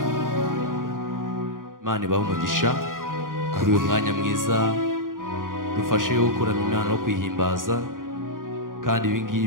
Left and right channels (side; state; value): left; late; 0.90 ms